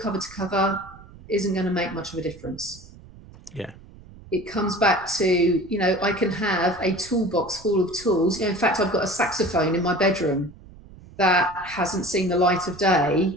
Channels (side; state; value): right; noise; rumble, 20 dB below the sound